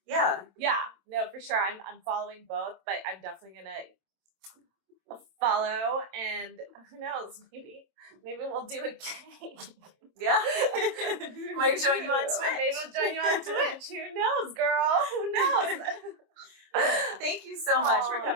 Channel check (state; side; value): late; left; 26 ms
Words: yeah, no, for sure. I'm following both, but I'm definitely gonna follow, and who knows, maybe we'll do a game. Yeah. Might join you on Twitch. Maybe we'll join you on Twitch. Who knows, girl? Who knows? Thank you so much for